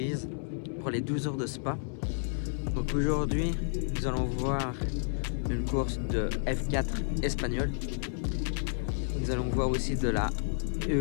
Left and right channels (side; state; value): right; silent; 57 dB below the other